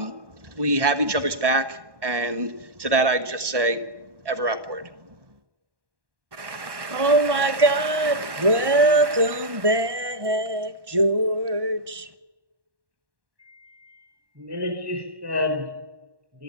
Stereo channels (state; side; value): late; left; 1.1 ms